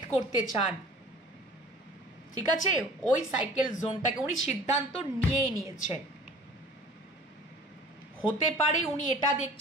করতে চান। ঠিক আছে, ওই সাইকেল জোনটাকে উনি সিদ্ধান্ত নিয়েই নিয়েছেন। হতে পারে উনি এটা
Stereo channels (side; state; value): both; normal; correlation 0.46